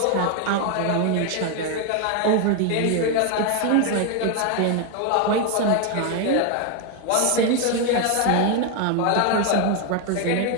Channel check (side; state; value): both; different; correlation 0.01